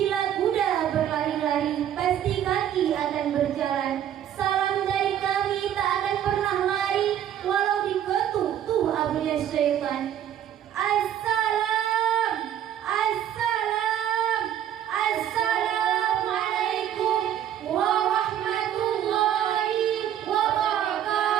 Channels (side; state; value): left; quieter; 10.5 dB